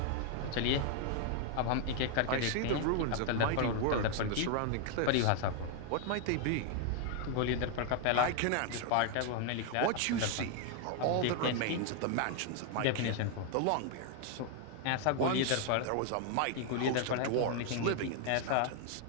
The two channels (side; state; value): both; different; correlation 0.00